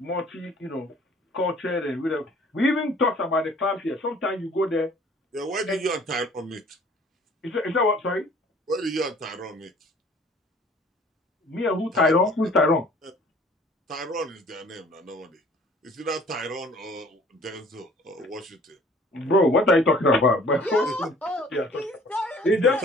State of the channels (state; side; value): normal; both; correlation 0.53